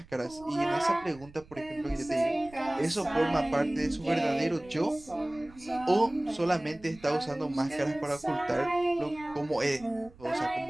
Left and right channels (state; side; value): noise; right; rumble, 23 dB below the sound